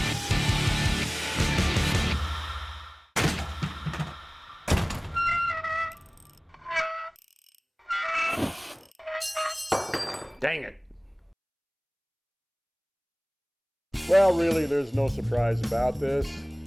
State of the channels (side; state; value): both; identical; correlation 1.00